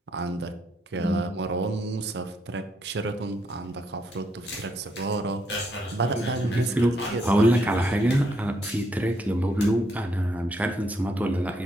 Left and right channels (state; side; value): normal; both; correlation 0.75